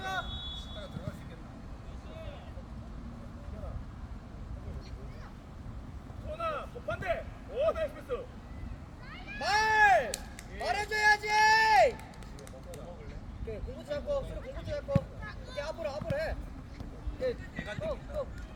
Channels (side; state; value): both; identical; correlation 1.00